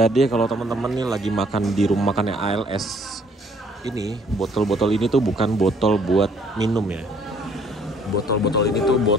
kalau teman-teman nih lagi makan di rumah makannya ALS, ini botol-botol ini tuh bukan botol buat minum ya. Botol-botol ini tuh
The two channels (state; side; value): normal; both; correlation 0.62